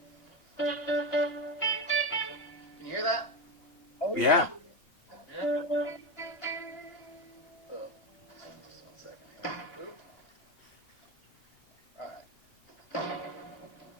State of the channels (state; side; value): late; right; 2.8 ms